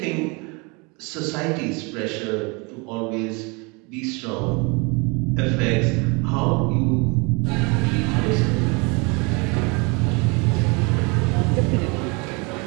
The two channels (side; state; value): left; quieter; 29.4 dB